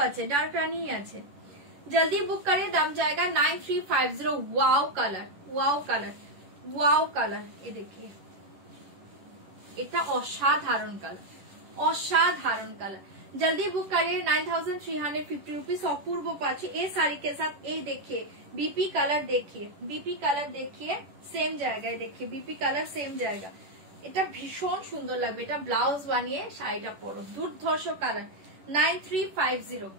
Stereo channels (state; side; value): late; left; 10 ms